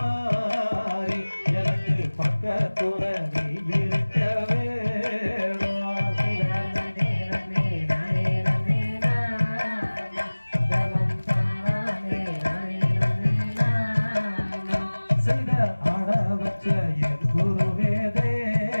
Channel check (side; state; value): both; inverted; correlation -1.00